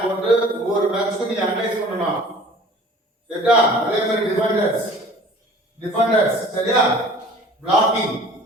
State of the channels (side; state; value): both; normal; correlation 0.47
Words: போட்டு ஒவ்வொரு மேட்ச்க்கும் நீ அனலைஸ் பண்ணணும், சரியா? அதே மாதிரி டிஃபெண்டர்ஸ் சரியா? பிளாக்கிங்